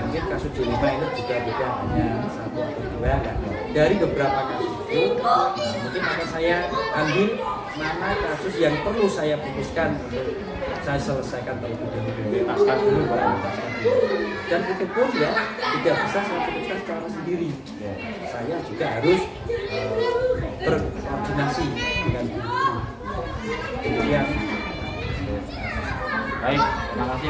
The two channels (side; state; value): both; identical; correlation 1.00